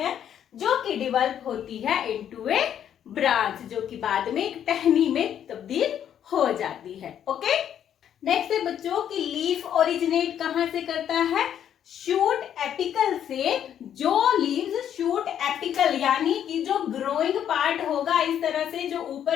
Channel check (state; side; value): quieter; right; 9.7 dB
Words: जो कि डेवलप होती है इनटू ए ब्रांच, जो कि बाद में एक टहनी में तब्दील हो जाती है, ओके। नेक्स्ट है बच्चों की लीफ ओरिजिनेट कहां से करता है, शूट एपिकल से। जो लीव्स शूट एपिकल यानी कि जो ग्रोइंग पार्ट होगा इस तरह से, जो